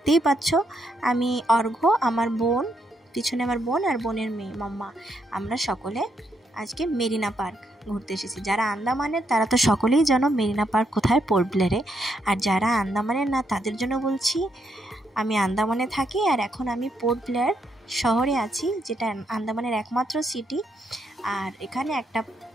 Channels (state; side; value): normal; both; correlation 0.77